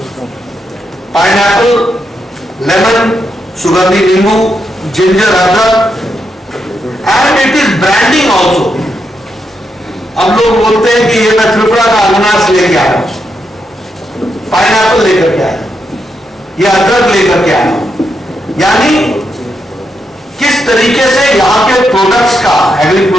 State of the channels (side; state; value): both; normal; correlation 0.82